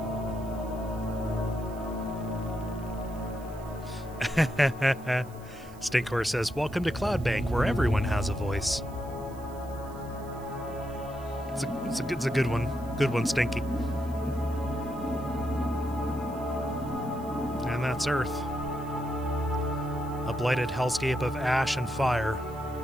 Stinkor says, "Welcome to Cloudbank, where everyone has a voice." It's a good one. Good one, Stinky. And that's Earth. A blighted hellscape of ash and fire.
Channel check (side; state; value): right; noise; hiss, 24 dB below the sound